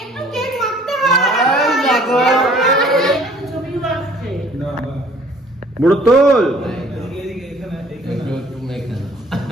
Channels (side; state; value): both; normal; correlation 0.55